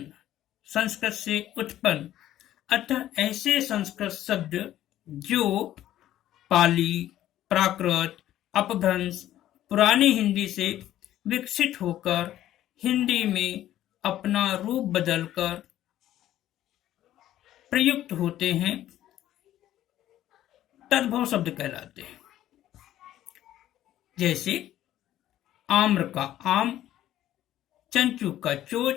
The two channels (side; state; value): right; quieter; 12.9 dB